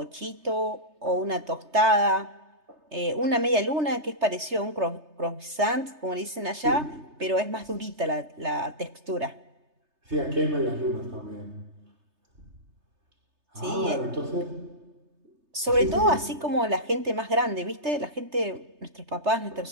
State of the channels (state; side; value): late; left; 3.3 ms